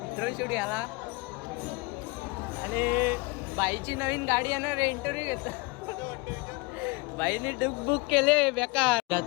ड्रोन शूट घ्यायला आणि बाईची नवीन गाडी येणार इंटरव्ह्यू घेतो. बाईने बुक केले बेकार.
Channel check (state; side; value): quieter; right; 26.5 dB